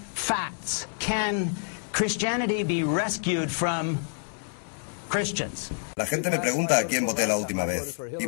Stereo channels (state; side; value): silent; right; digital silence